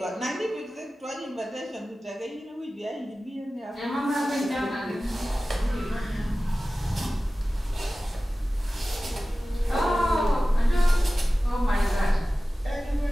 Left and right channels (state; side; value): normal; both; correlation 0.96